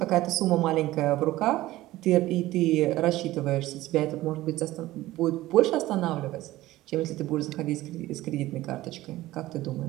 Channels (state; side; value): quieter; left; 16.7 dB